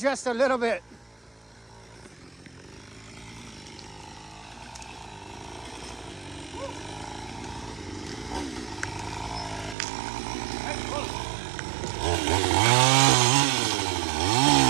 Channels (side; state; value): left; drops out; at 9.8 s